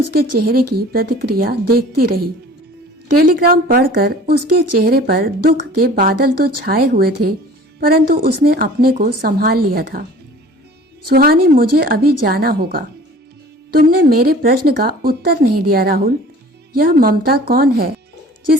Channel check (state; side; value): normal; both; correlation 0.46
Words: चेहरे की प्रतिक्रिया देखती रही। टेलीग्राम पढ़कर उसके चेहरे पर दुख के बादल तो छाए हुए थे, परंतु उसने अपने को संभाल लिया था। सुहानी, मुझे अभी जाना होगा। तुमने मेरे प्रश्न का उत्तर नहीं दिया राहुल। यह ममता कौन है